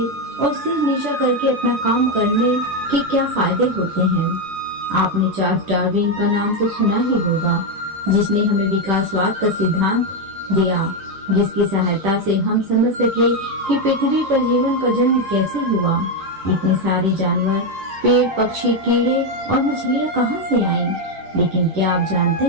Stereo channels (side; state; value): left; late; 10 ms